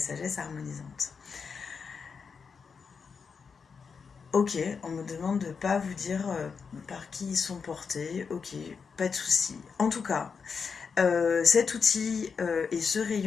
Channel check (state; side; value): quieter; right; 5.7 dB